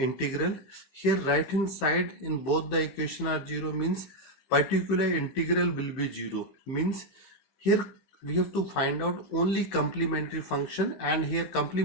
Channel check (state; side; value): late; right; 15 ms